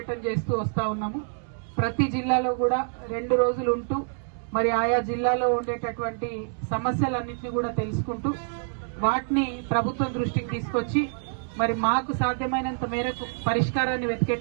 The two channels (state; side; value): silent; left; 60 dB below the other